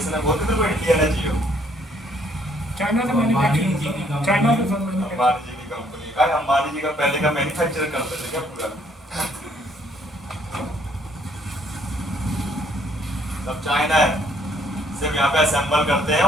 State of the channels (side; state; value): both; normal; correlation 0.65